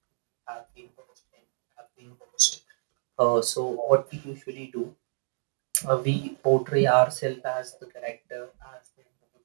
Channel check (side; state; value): left; silent; digital silence